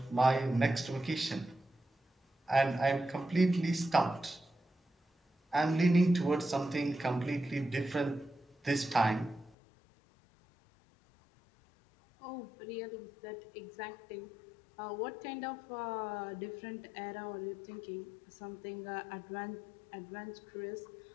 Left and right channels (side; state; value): right; drops out; at 9.6 s